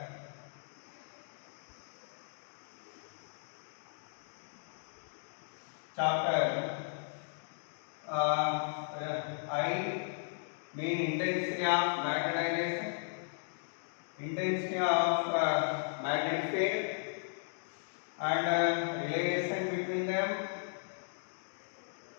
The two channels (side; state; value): right; silent; digital silence